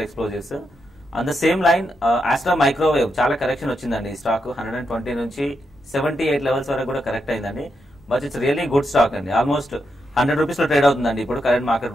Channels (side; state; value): both; normal; correlation 0.83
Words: Explosives. On the same line Astra Microwave చాలా కరెక్షన్ వచ్చిందండి. ఈ స్టాక్ 120 నుంచి 78 లెవెల్స్ వరకు కూడా కరెక్ట్ అయిందండి. But it's really good stock అండి. ఆల్మోస్ట్ 100 రూపీస్ లో ట్రేడ్ అవుతుందండి ఇప్పుడు కరెంట్ మార్కెట్